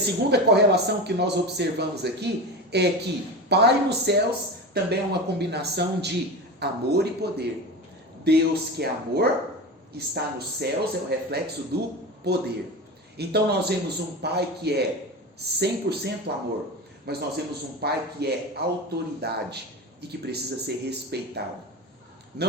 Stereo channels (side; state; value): both; normal; correlation 0.26